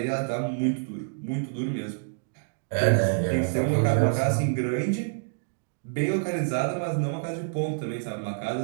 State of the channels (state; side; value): silent; left; digital silence